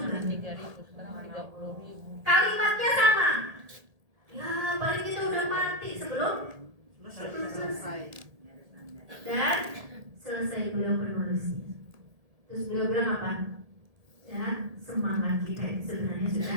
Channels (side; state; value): left; late; 1.7 ms